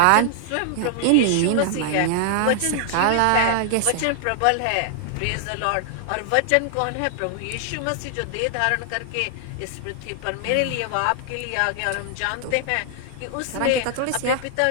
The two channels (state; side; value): different; both; correlation 0.00